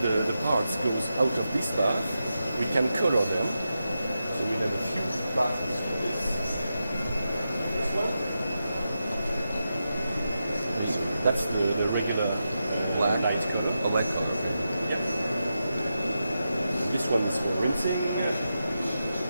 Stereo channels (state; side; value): inverted; both; correlation -0.89